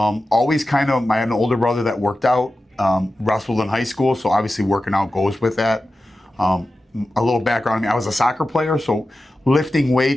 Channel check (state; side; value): normal; both; correlation 0.93